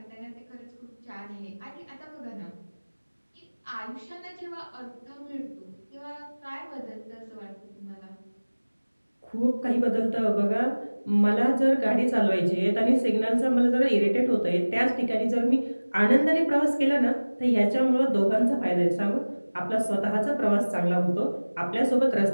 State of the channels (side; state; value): both; inverted; correlation -1.00